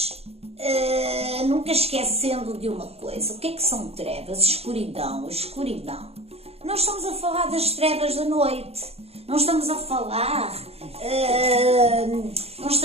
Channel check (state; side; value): late; left; 0.29 ms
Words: nunca esquecendo de uma coisa, o que é que são trevas? Escuridão, escuridão. Não estamos a falar das trevas da noite, não estamos a falar